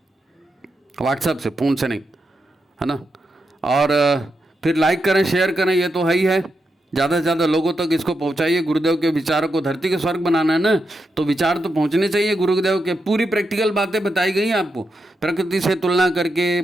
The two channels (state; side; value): normal; both; correlation 0.85